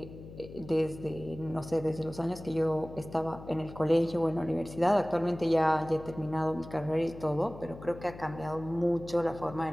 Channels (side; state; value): left; noise; hum, 15 dB below the sound